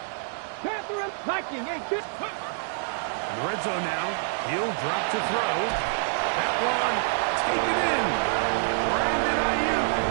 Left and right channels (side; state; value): left; silent; digital silence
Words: Catherine Viking 18. In the red zone now, he'll drop to throw. That one, taken in. Brandon Ayuk,